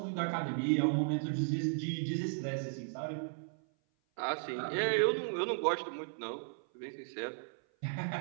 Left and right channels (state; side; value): silent; left; 54 dB below the other